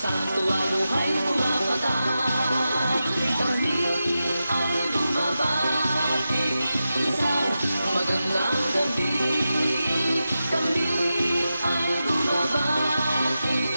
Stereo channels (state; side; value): inverted; both; correlation -0.91